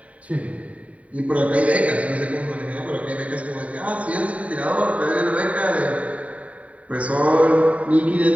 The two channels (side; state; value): left; late; 0.068 ms